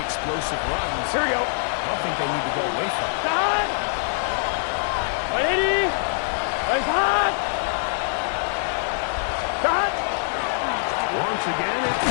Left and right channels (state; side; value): silent; right; digital silence